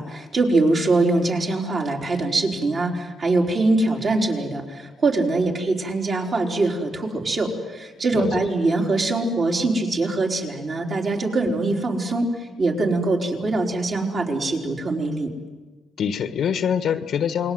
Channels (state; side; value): normal; both; correlation 0.82